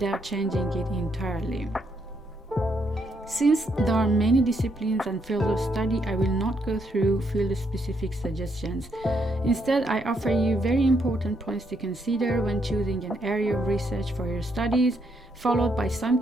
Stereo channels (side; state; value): both; normal; correlation 0.75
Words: changing it entirely. Since there are many disciplines and fields of study, I will not go through field-specific suggestions. Instead, I offer you very important points to consider when choosing an area of research for your studies, followed by some